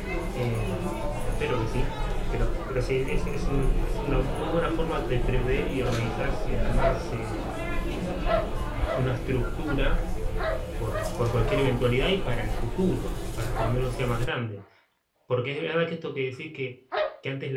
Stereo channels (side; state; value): both; identical; correlation 1.00